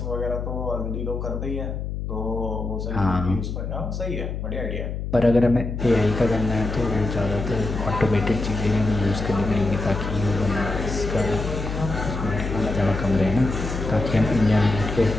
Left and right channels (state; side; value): noise; left; hum, 4 dB below the sound